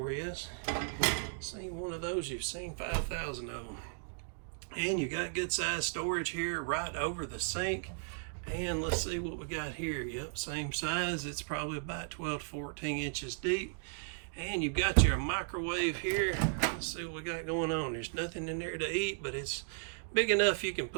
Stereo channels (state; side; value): silent; left; digital silence